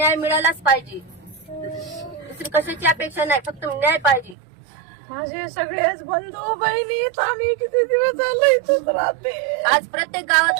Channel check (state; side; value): drops out; left; at 4.4 s